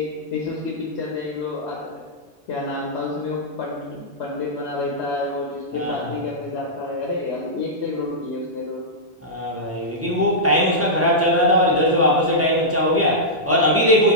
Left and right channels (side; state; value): both; normal; correlation -0.11